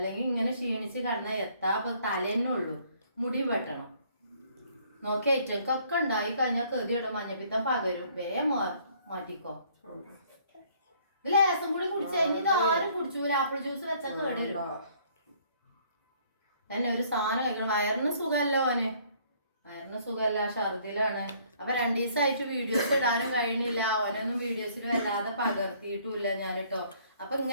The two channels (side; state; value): both; inverted; correlation -0.61